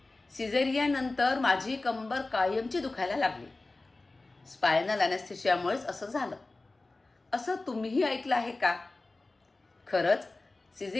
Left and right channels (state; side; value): quieter; right; 3.2 dB